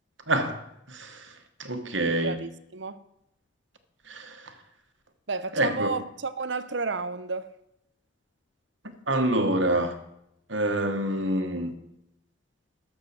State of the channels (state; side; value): normal; both; correlation 0.01